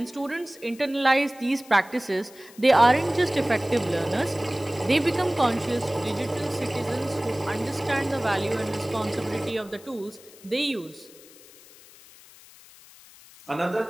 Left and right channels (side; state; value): left; noise; hiss, 22 dB below the sound